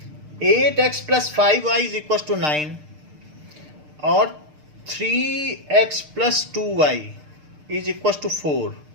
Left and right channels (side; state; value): left; late; 6.6 ms